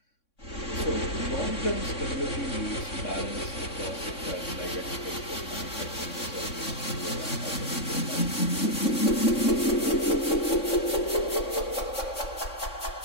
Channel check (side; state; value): right; late; 3.6 ms